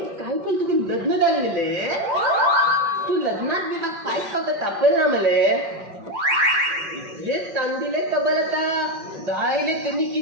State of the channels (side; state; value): left; late; 4.9 ms